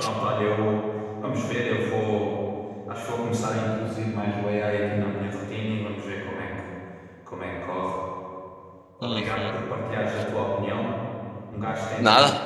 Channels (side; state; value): both; identical; correlation 1.00